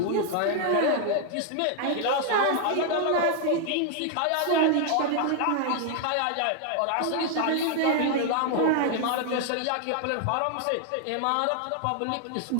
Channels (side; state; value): both; different; correlation 0.00